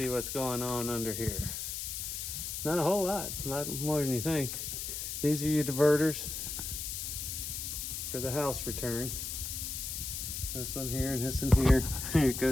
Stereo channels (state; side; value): noise; left; hiss, 5 dB below the sound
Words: what's going on under here. Not a whole lot more than you think. These are your diverters for the house return. This one here and this one here. It